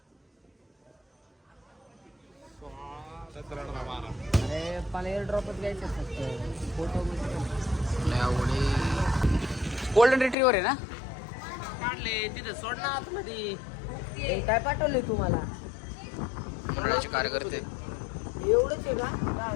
अरे मला एअर ड्रॉपच घ्यायचं फक्त. फोटो गोल्डन रिट्रीवर आहे ना? काढले तिथे सोड ना आतमध्ये. काय पाठवले तुम्हाला? मंडळाचे कार्यकर्ते एवढंच आहे का?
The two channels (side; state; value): right; drops out; at 10.4 s